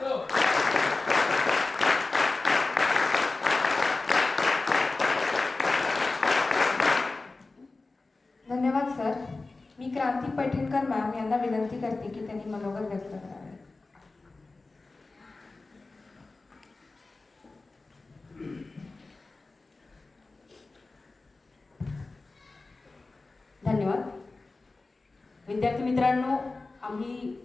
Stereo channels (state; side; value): quieter; right; 3.5 dB